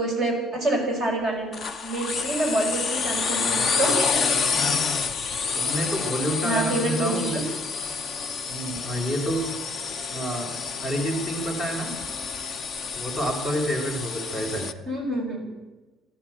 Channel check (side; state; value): both; normal; correlation 0.64